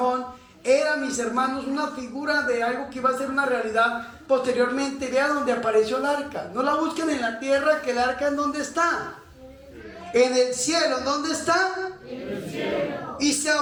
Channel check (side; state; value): both; identical; correlation 1.00